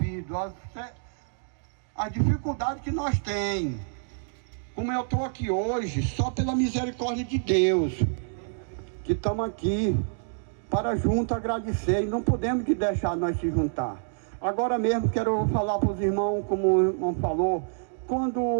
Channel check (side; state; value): left; silent; digital silence